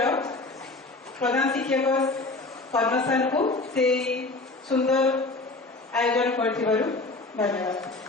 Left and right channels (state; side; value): quieter; right; 3.3 dB